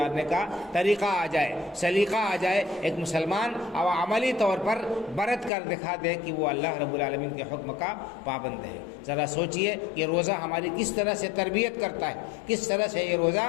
کا طریقہ آ جائے، سلیقہ آ جائے، ایک مسلمان اور عملی طور پر برت کر دکھا دے کہ وہ اللہ رب العالمین کے حکم کا پابند ہے۔ ذرا سوچئے کہ روزہ ہماری کس طرح سے تربیت کرتا ہے، کس طرح سے یہ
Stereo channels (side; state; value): right; drops out; at 5.5 s